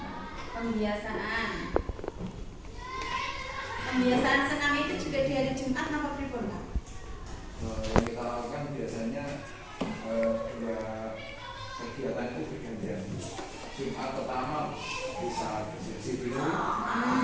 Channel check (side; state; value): both; identical; correlation 1.00